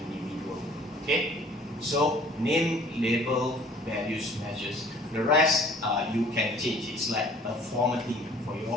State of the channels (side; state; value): both; normal; correlation 0.52